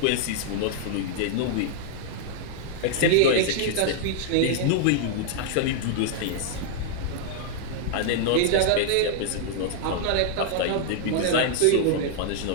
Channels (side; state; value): both; different; correlation -0.01